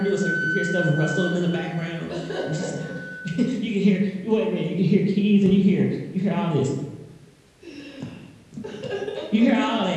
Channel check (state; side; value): identical; both; correlation 1.00